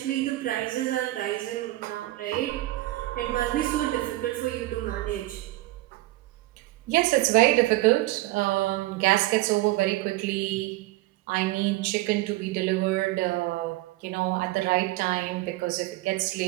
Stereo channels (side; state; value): left; quieter; 17.9 dB